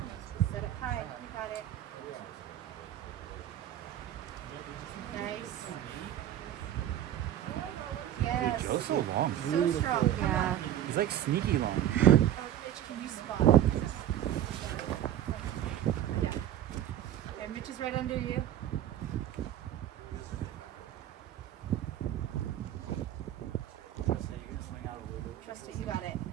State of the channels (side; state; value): left; quieter; 11.7 dB